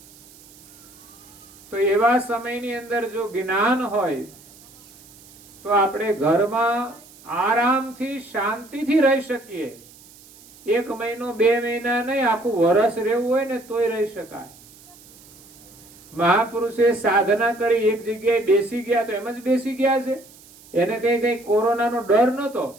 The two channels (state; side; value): noise; right; hiss, 23 dB below the sound